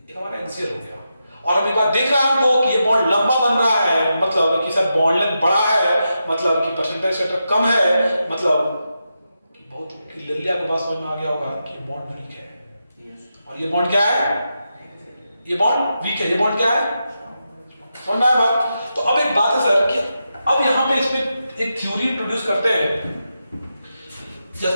एक हमारा एक्सियल हो गया। और हम एक बार देख रहे हैं हमको कि ये बॉन्ड लंबा बन रहा है, मतलब कि सर बॉन्ड लेंथ बड़ा है, मतलब कि परसेंटेज सेक्टर कम है, मतलब कि बहुत क्लियरली आपके पास समझ में आ गया होगा कि बॉन्ड वीक है। और ये बॉन्ड क्या है, ये बॉन्ड वीक है, ये बॉन्ड क्या है, समझ में आया बात। तो अब एक बात है सर कि अब यहां पे इसमें एक थ्योरी इंट्रोड्यूस करते हैं,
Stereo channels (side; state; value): both; inverted; correlation -0.87